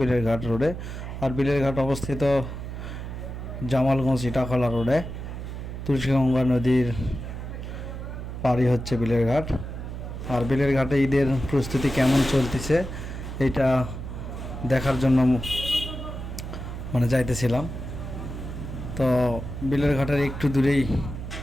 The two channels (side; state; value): right; noise; hum, 8 dB below the sound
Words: বিলেরঘাট রোডে। আর বিলেরঘাট অবস্থিত জামালগঞ্জ ইটাখলা রোডে। তুলসীগঙ্গা নদীর পাড়ি হচ্ছে বিলেরঘাট। আর বিলেরঘাটে ঈদের প্রস্তুতি কেমন চলতেছে এটা দেখার জন্য যাইতেছিলাম। তো বিলেরঘাটের একটু দূরেই